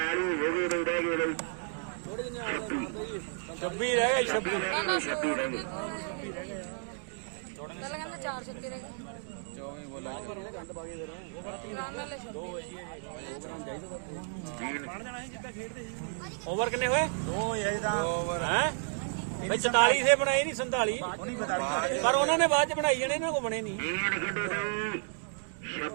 ਹੋ ਗਏ ਬਈ ਰਹਿ ਗਏ ਬਈ ਥੋੜੇ ਜਿੰਨੇ ਆ 26 ਰਹਿ ਗਏ 26 ਰਹਿ ਗਏ 26 ਰਹਿ ਗਏ ਓਵਰ ਕਿੰਨੇ ਹੋਏ 2 ਹੋਏ ਜੀ ਤਾਂ ਹੈ 47 ਦੇ ਬਣਾਏ ਨਹੀਂ 47 ਪਰ ਉਹਨਾਂ ਨੇ ਬਾਅਦ ਚ ਬਣਾਈ ਜਾਣੇ ਇਹਨਾਂ ਕੋ ਬਣੇ ਨਹੀਂ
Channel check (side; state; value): left; silent; 56 dB below the other